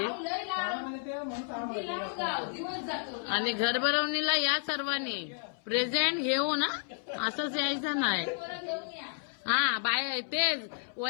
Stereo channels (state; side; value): silent; right; 57 dB below the other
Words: आणि घर भरवणीला या सर्वांनी प्रेझेंट घेऊ ना, असंच यायचं नाही। हा बाय तेच